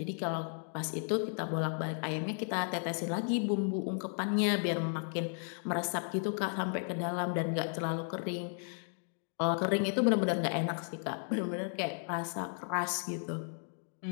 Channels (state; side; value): silent; right; 55 dB below the other